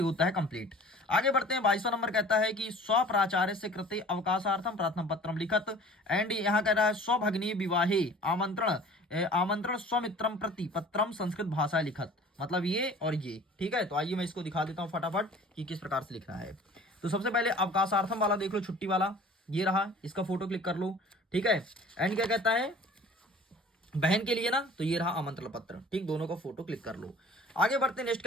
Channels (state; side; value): normal; both; correlation 0.46